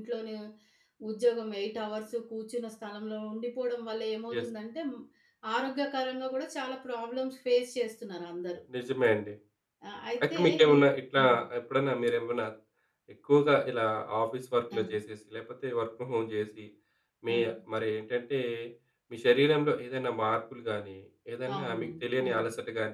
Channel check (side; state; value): both; identical; correlation 1.00